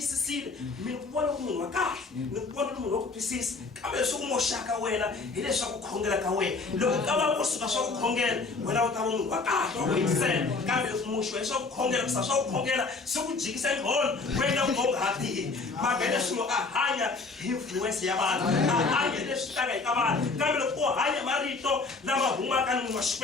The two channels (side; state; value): right; quieter; 4.0 dB